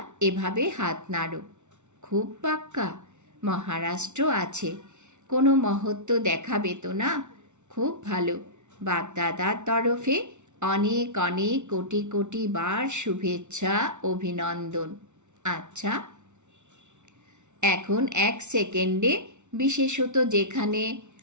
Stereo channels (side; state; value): left; late; 0.83 ms